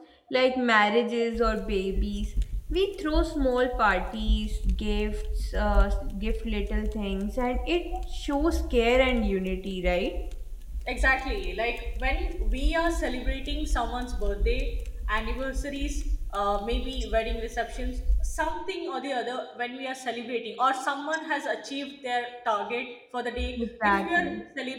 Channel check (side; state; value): both; identical; correlation 1.00